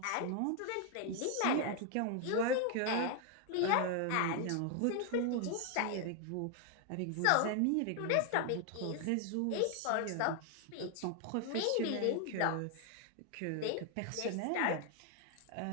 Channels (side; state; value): both; different; correlation 0.00